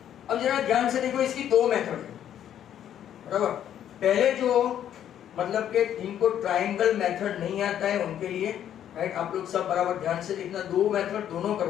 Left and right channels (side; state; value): right; quieter; 10.3 dB